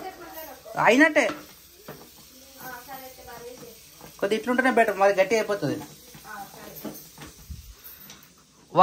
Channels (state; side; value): identical; both; correlation 1.00